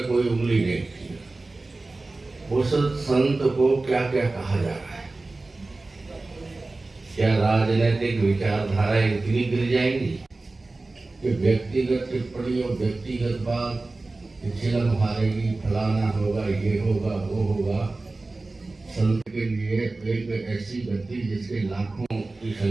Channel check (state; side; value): quieter; left; 3.3 dB